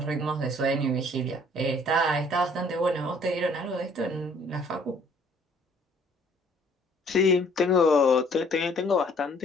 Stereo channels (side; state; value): both; normal; correlation 0.59